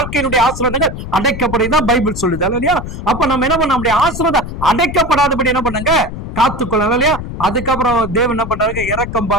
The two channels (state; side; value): noise; left; rumble, 8 dB below the sound